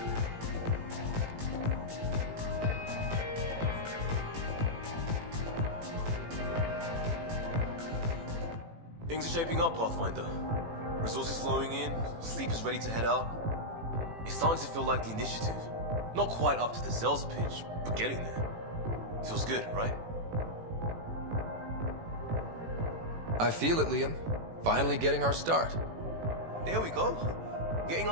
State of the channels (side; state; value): left; late; 18 ms